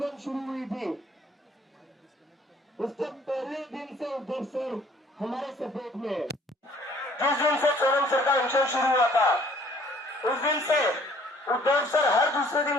शुरू हुई थी उसके पहले दिन से उद्धव सर हमारे सपोर्ट में है। जिस दिन से सोनम सर का अनशन शुरू हुआ था उस दिन से उद्धव सर हर दूसरे दिन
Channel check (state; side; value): normal; both; correlation 0.58